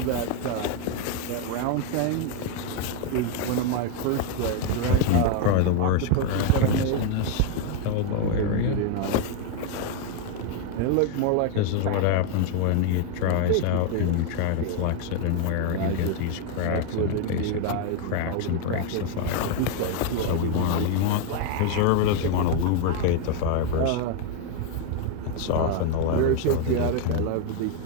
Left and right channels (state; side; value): different; both; correlation 0.02